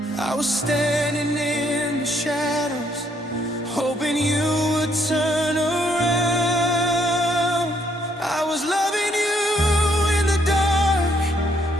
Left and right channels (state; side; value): normal; both; correlation 0.71